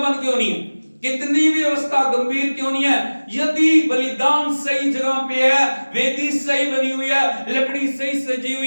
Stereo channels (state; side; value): inverted; both; correlation -1.00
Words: क्यों नहीं है, कितनी भी अवस्था गंभीर क्यों नहीं है, यदि बलिदान सही जगह पे है, वेदी सही बनी हुई है, लकड़ी सही सजी